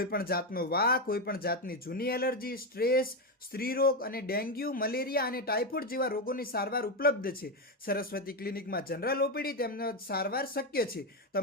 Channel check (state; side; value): normal; both; correlation 0.09